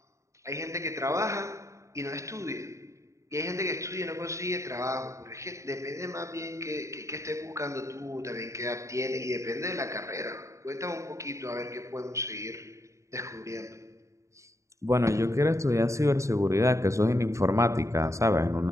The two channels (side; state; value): left; late; 0.15 ms